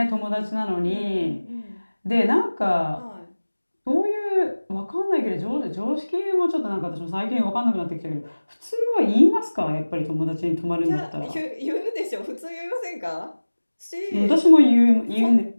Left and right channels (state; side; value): inverted; both; correlation -1.00